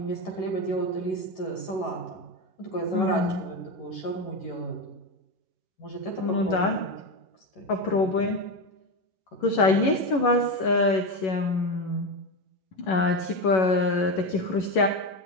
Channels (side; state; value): right; late; 11 ms